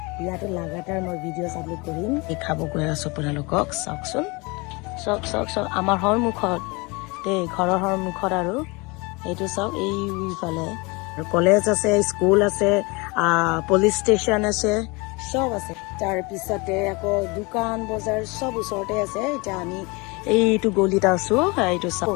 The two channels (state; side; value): quieter; right; 27.0 dB